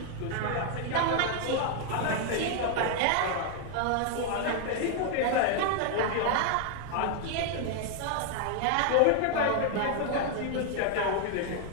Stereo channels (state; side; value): different; both; correlation 0.00